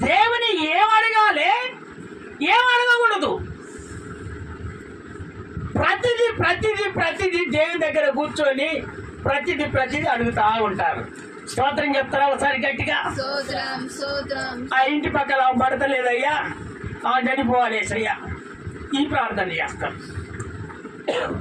దేవుని ఏం అడగాలి, ఏం అడగకూడదు. ప్రతిదీ దేవుని దగ్గర కూర్చొని ప్రతిదీ అడుగుతా ఉంటారు. స్తోత్రం చెప్తారా ఒకసారి గట్టిగా? స్తోత్రం స్తోత్రం. ఆ ఇంటి పక్కన పడతలేదయ్యా, చనిపోవాలేసయ్యా, ఈ ప్రార్థన చేస్తాం.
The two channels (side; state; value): both; identical; correlation 1.00